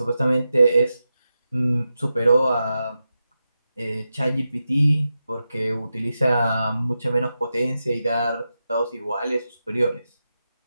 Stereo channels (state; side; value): inverted; both; correlation -0.90